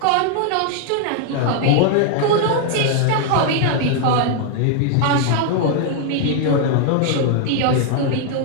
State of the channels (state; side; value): different; both; correlation 0.00